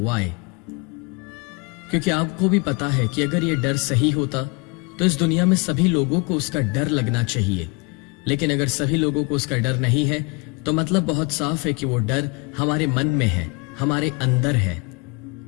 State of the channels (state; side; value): quieter; right; 29.1 dB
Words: वाई? क्योंकि आपको भी पता है कि अगर यह डर सही होता तो इस दुनिया में सभी लोगों को उसका डर लगना चाहिए। लेकिन अगर सभी लोगों को उसका डर नहीं है तो मतलब बहुत साफ है कि वो डर हमारे मन में है, हमारे अंदर है,